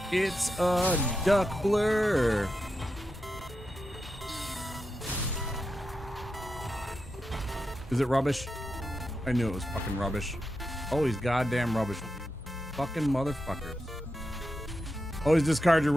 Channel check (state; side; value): normal; both; correlation 0.88